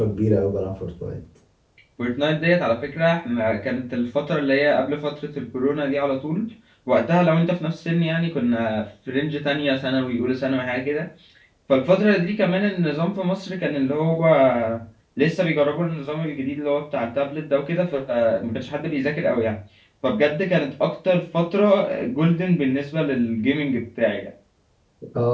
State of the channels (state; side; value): identical; both; correlation 1.00